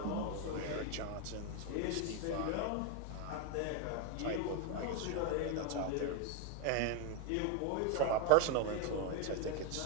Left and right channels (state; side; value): different; both; correlation 0.01